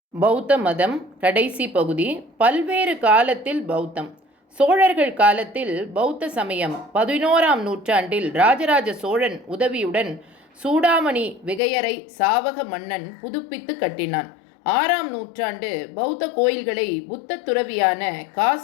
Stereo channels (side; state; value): right; drops out; at 11.6 s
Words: பௌத்த மதம் கடைசி பகுதி. பல்வேறு காலத்தில் பௌத்தம். சோழர்கள் காலத்தில் பௌத்த சமயம் 11ஆம் நூற்றாண்டில் ராஜராஜ சோழன் உதவியுடன் சூடாமணி விகையரை சாவக மன்னன் புதுப்பித்து கட்டினான். 6ஆம் நூற்றாண்டு பௌத்த கோயில்களை புத்த துறவியான